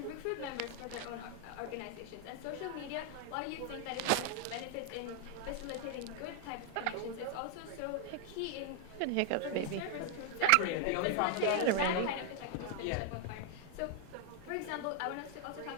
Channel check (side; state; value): both; different; correlation 0.00